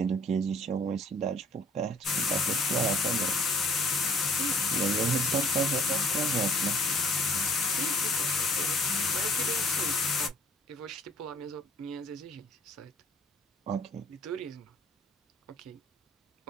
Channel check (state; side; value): normal; both; correlation 0.55